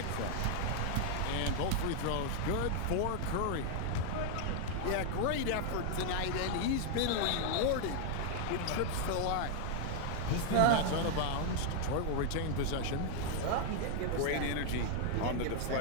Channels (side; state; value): both; different; correlation 0.00